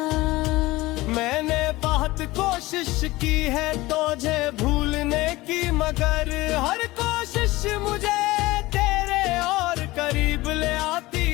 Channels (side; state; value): right; quieter; 19.4 dB